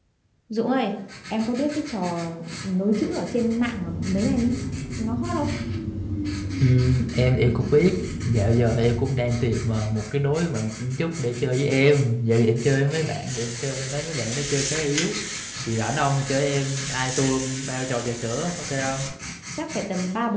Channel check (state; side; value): identical; both; correlation 1.00